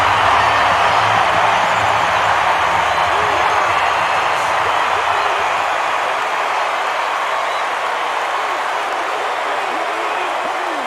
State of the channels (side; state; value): both; identical; correlation 1.00